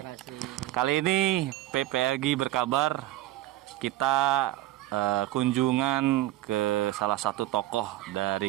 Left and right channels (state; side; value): quieter; left; 15.7 dB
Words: Kali ini PPLG berkabar kita kunjungan ke salah satu tokoh dari